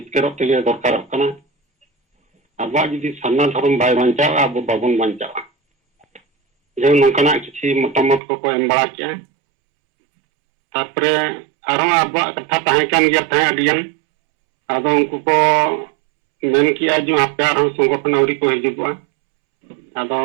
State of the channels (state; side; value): drops out; left; at 8.2 s